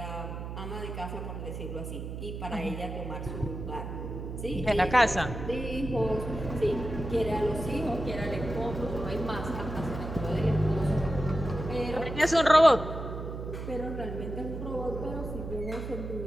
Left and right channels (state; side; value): noise; right; hum, 7 dB below the sound